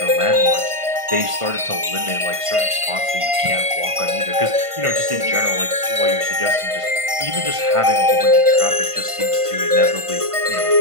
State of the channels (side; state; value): left; late; 1.5 ms